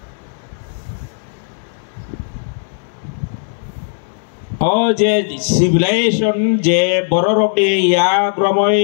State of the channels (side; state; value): right; silent; 62 dB below the other